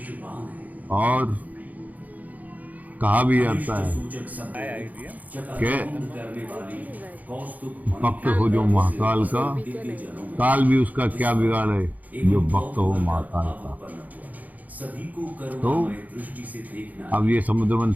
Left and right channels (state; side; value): late; left; 0.078 ms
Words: और कहा भी जाता है कि भक्त हो जो महाकाल का, काल भी उसका क्या बिगाड़े जो भक्त हो महाकाल का। तो अब ये समुद्र